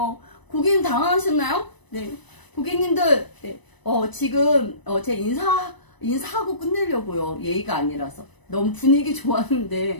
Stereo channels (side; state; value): right; late; 1.0 ms